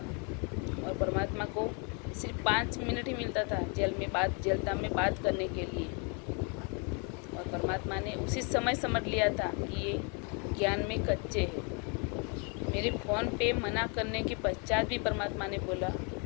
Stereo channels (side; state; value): right; quieter; 35.9 dB